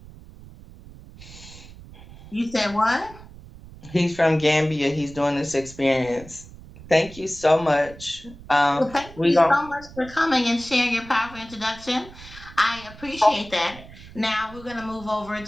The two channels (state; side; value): noise; right; rumble, 18 dB below the sound